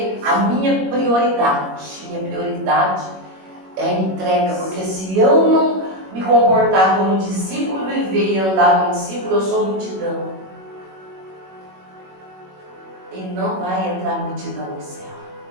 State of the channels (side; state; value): left; late; 21 ms